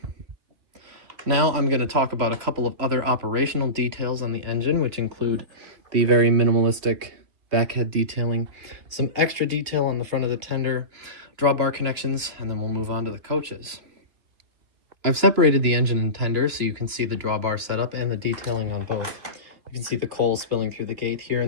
Now I'm going to talk about a couple of other operational details on the engine, which include the very minimalistic backhead detailing, some extra detail on the front of the tender, drawbar connections, and then we'll move on to the coaches. I've separated the engine and tender so you can see the drawbar setup and the detailing on both. You can see the coal spilling through the gate here,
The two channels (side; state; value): left; late; 2.8 ms